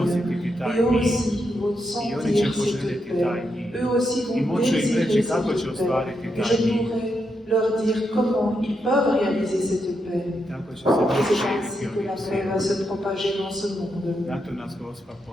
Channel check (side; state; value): both; normal; correlation 0.82